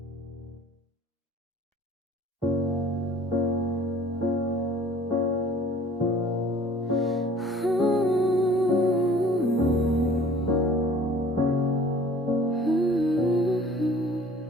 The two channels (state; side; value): normal; both; correlation 0.50